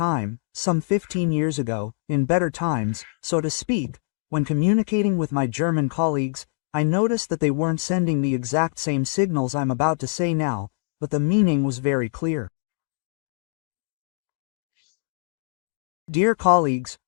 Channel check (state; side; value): silent; right; digital silence